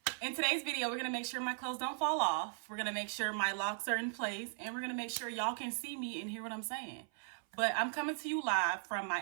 In today's video, we're gonna make sure my clothes don't fall off. We're gonna make sure my locks are in place, and we're gonna make sure y'all can see me and hear what I'm saying. But I'm coming to you live from my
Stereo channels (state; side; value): silent; left; 53 dB below the other